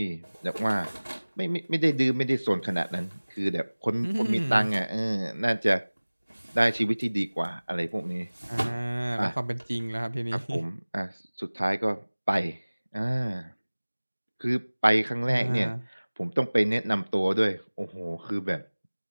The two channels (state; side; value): inverted; both; correlation -1.00